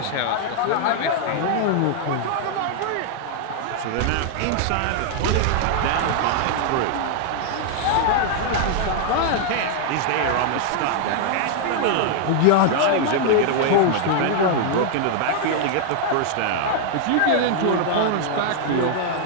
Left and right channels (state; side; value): different; both; correlation 0.00